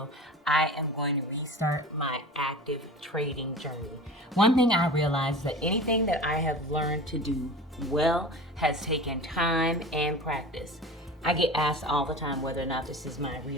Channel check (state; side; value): normal; both; correlation 0.36